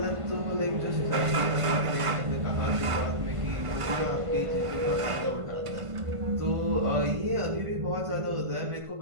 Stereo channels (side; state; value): left; late; 1.5 ms